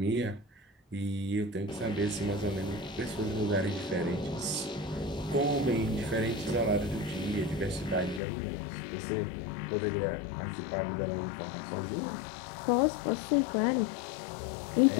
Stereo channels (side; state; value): right; drops out; at 8.2 s